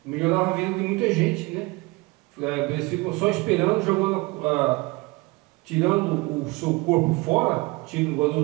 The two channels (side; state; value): left; quieter; 24.1 dB